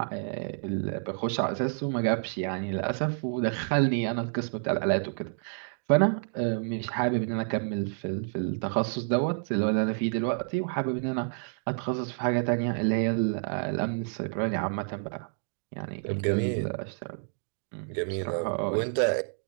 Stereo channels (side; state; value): left; silent; digital silence